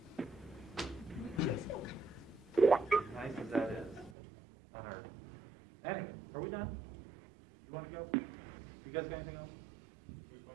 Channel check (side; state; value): left; drops out; at 4.2 s